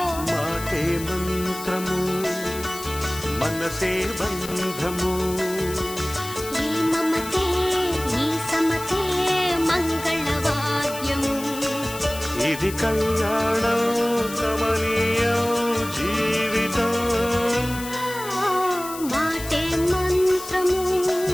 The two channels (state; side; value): noise; left; hiss, 12 dB below the sound